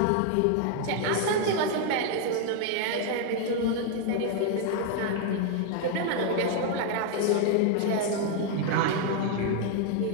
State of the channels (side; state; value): both; different; correlation 0.00